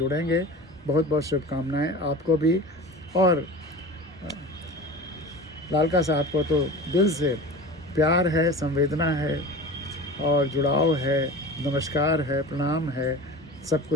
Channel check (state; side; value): normal; both; correlation 0.35